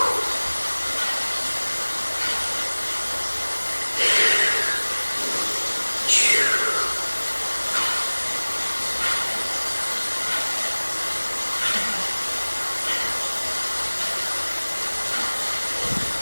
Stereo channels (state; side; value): inverted; both; correlation -1.00